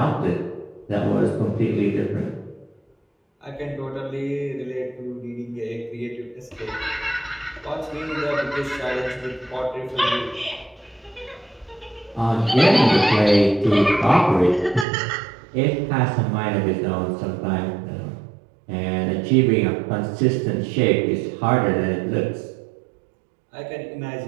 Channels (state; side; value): drops out; left; at 14.9 s